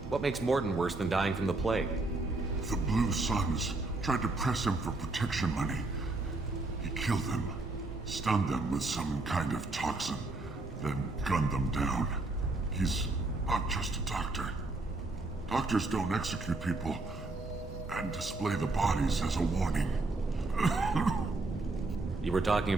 What makes Morton worse than dying from the plague? The Blue Suns tried to press him for protection money. He killed them, stunned them with some kind of toxin, then gunned them down. He's not just a doctor. Doctors don't execute people and display the bodies as a warning. You were talking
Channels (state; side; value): quieter; left; 3.1 dB